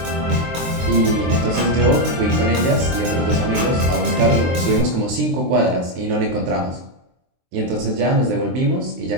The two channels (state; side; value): late; left; 23 ms